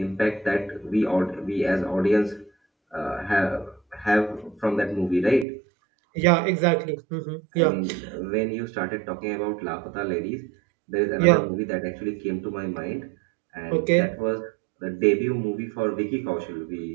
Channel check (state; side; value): drops out; left; at 5.5 s